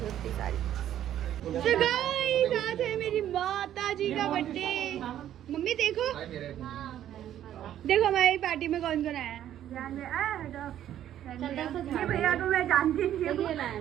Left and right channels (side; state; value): left; quieter; 11.3 dB